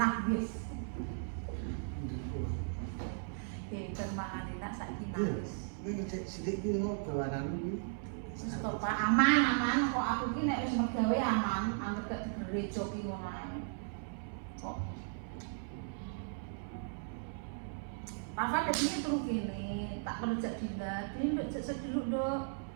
wis. Bermangan enak saiki enak wis. ini ngecek sidik ini kok bawanan ini. Wis to Pak, aman. Kok aku ki nek wis mergawe aman, anggere gak digerejo ki ngono ae. Kok Rafa tadi terus gini, tak perlu jak dinda, ini nduk jak sediluk nduk,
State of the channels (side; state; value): left; silent; 53 dB below the other